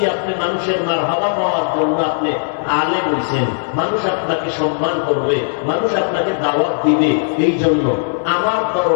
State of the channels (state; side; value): silent; right; 64 dB below the other